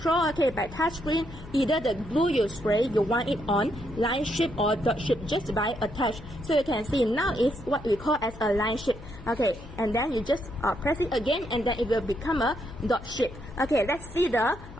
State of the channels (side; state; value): left; noise; hum, 16 dB below the sound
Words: okay, by touch screen either the glue you spray you want it on line shape or dot shape just by a touch. So you can see now it's what we call as a line shape. Okay, and then you just press it again and then it will become a dot shape. Okay, let's see the